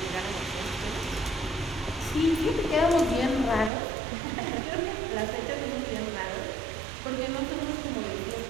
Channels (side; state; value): left; drops out; at 3.7 s